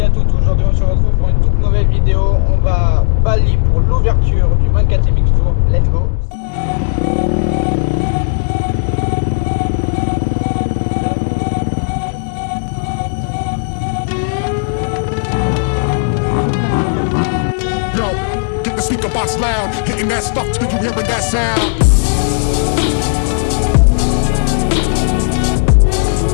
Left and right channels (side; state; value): right; silent; digital silence